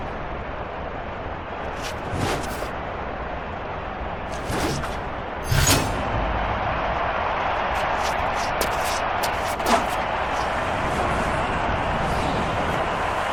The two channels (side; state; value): both; identical; correlation 1.00